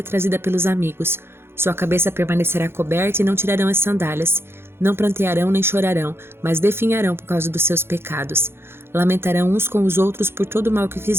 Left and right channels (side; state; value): left; late; 0.11 ms